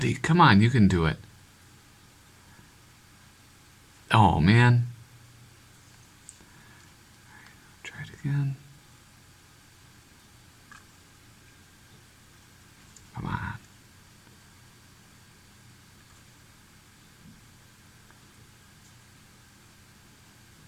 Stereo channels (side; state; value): both; identical; correlation 1.00